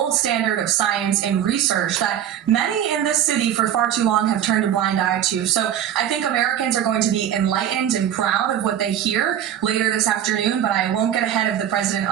standard of science and research that many in this city for far too long have turned a blind eye to. So I think Americans are going to be enlightened and proud of what they hear later this afternoon, but I won't get ahead of the president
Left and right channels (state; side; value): quieter; left; 10.3 dB